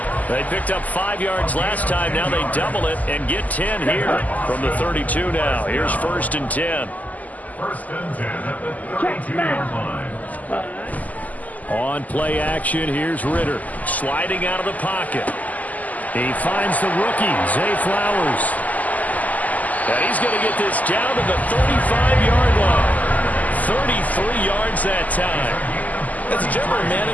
They picked up 5 yards last time. Now they double it and get 10 here from the 32 now. Here's 1st and 10. 1st and 10 at the 32-yard line. On play action, here's Ritter sliding out of the pocket. He finds the rookie, Zay Flowers. And he's going to get this down to the 35-yard line. 33 yards that time. As a general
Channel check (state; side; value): late; right; 0.078 ms